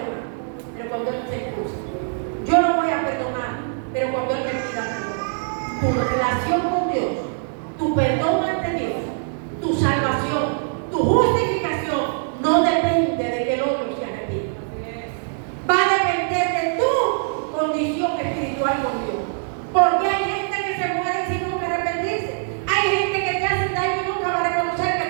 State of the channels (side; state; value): left; silent; digital silence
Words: pero cuando Él se excusa. Yo no voy a perdonar, pero cuando Él me pida perdón. Tu relación con Dios, tu perdón ante Dios, tu salvación, tu justificación, no depende de que el otro se arrepienta. Va a depender de tu condición espiritual con Dios. Porque hay gente que se muere sin nunca arrepentirse. Hay gente que te hace daño y nunca va a reconocer